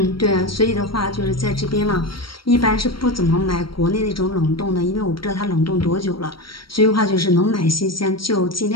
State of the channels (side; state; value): right; late; 0.74 ms